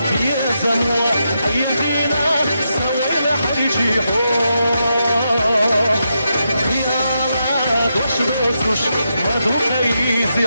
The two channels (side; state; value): both; inverted; correlation -0.84